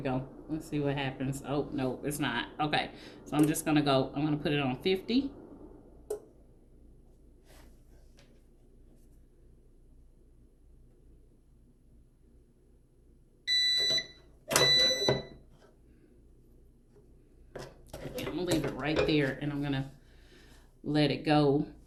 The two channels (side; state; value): both; identical; correlation 1.00